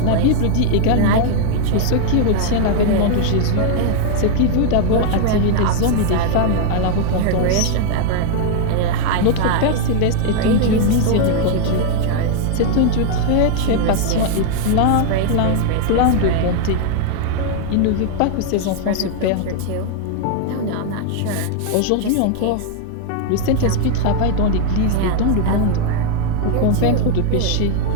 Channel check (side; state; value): both; different; correlation 0.00